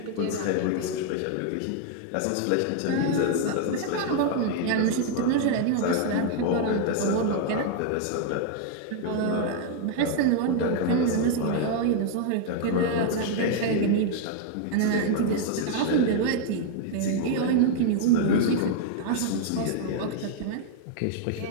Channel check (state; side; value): different; both; correlation 0.00